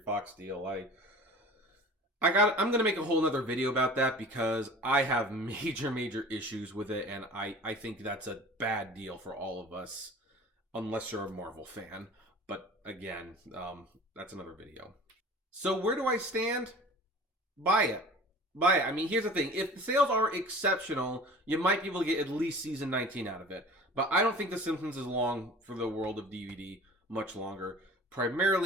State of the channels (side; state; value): both; normal; correlation 0.42